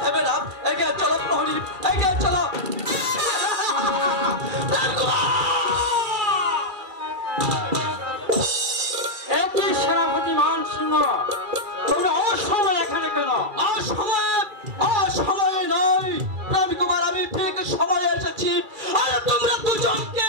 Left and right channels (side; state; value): left; late; 2.3 ms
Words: দেবে না। এগিয়ে চলো প্রহরী, এগিয়ে চলো। একই সেনাপতি মান সিংহ, তুমি অসময় এখানে কেন? অসময়ে নয় প্রেম কুমার, আমি ঠিক সময়ে এসেছি। আর তোমরা দুজনকে